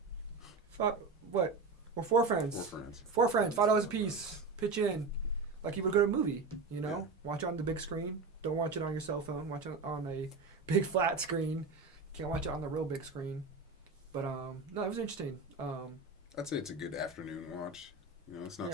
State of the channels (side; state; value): left; quieter; 4.1 dB